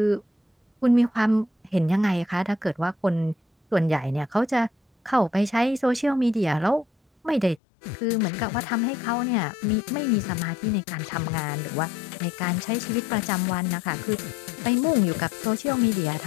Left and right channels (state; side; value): drops out; right; at 7.6 s